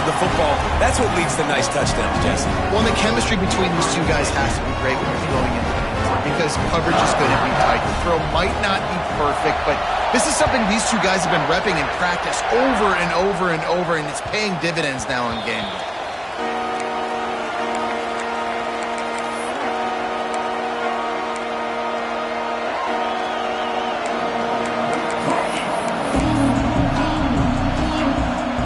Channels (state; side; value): identical; both; correlation 1.00